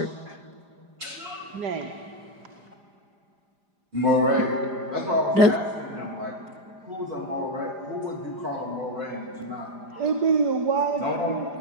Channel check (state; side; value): late; left; 5.0 ms